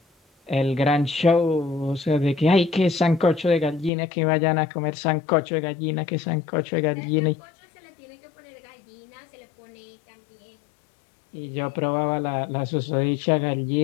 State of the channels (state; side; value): drops out; right; at 3.9 s